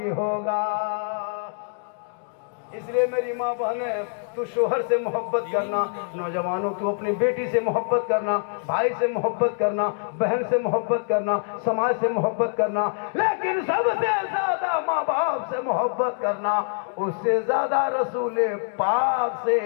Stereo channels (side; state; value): right; silent; digital silence